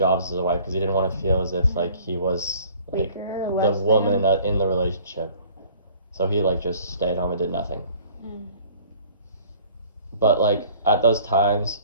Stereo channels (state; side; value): inverted; both; correlation -0.52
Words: as the wife because he didn't want to feel as if like he was like Weaker, the less woman in the relationship. So he like just stayed home and did nothing. But like at those times,